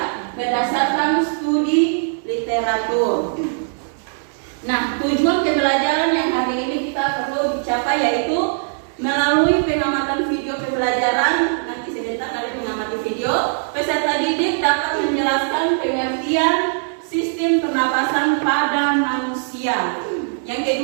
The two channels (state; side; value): silent; left; digital silence